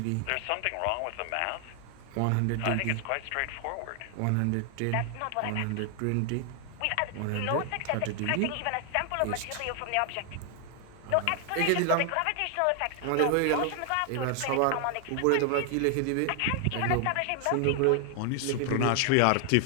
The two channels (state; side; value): different; both; correlation 0.00